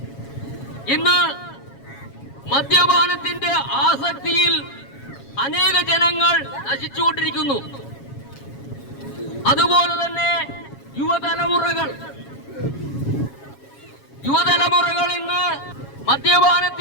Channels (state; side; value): late; right; 7.3 ms